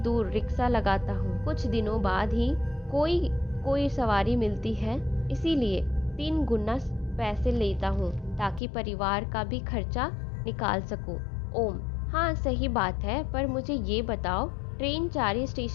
रिक्शा लगाता हूँ। कुछ दिनों बाद ही कोई सवारी मिलती है, इसीलिए 3 गुना पैसे लेता हूँ ताकि परिवार का भी खर्चा निकाल सकूं। ओम, हाँ सही बात है, पर मुझे ये बताओ ट्रेन चारी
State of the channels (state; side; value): drops out; right; at 8.6 s